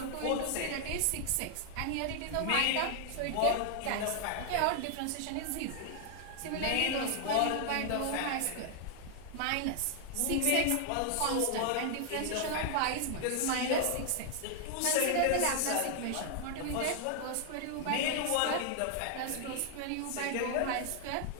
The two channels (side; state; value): both; different; correlation 0.00